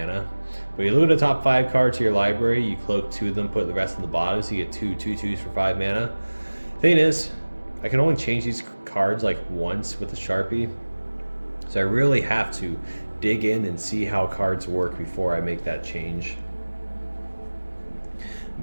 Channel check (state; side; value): inverted; both; correlation -1.00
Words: But you look at the top 5 cards to your library, you cloak 2 of them, put the rest in the bottom, so you get 2 2/2s for 5 mana. Thing is, I can only change these cards like once with the Sharpie. So I really have to dig in and see how cards work before I make that change.